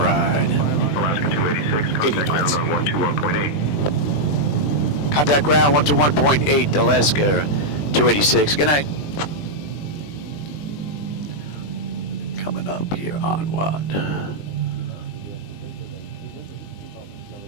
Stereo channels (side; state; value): right; late; 20 ms